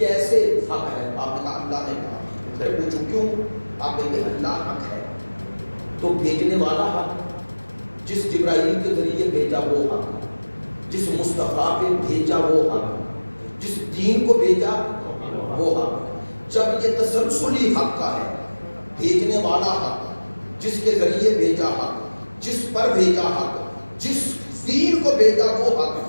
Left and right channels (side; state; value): both; inverted; correlation -1.00